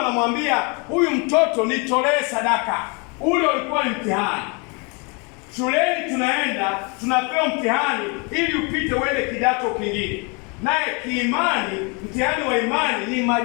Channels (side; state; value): right; quieter; 32.1 dB